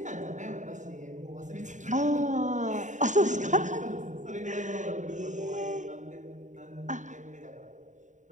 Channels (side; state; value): left; late; 0.36 ms